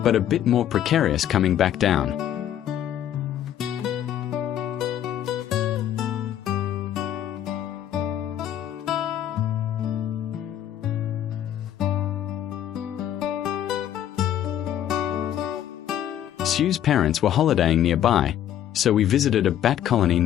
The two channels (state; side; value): quieter; right; 10.9 dB